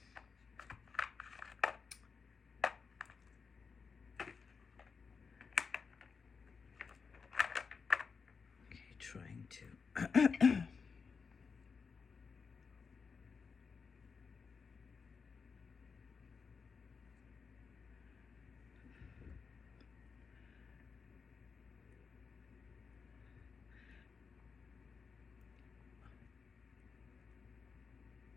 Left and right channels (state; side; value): quieter; right; 5.3 dB